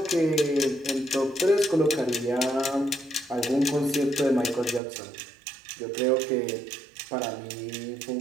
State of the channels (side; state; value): left; drops out; at 4.8 s